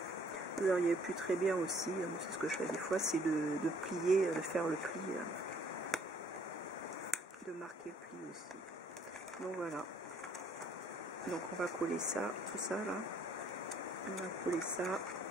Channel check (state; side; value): normal; both; correlation 0.62